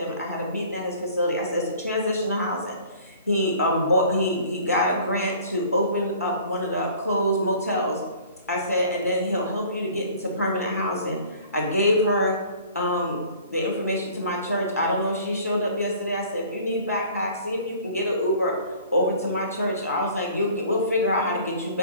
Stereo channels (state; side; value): inverted; both; correlation -0.49